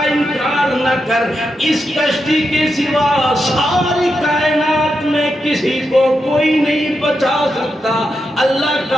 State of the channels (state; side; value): normal; both; correlation 0.86